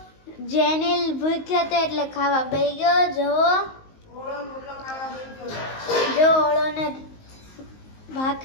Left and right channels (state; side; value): late; right; 19 ms